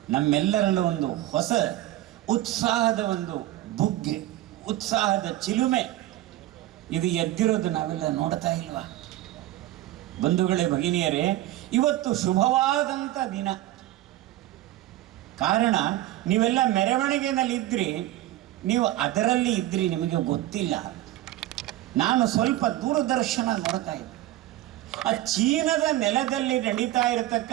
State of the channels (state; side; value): quieter; left; 15.1 dB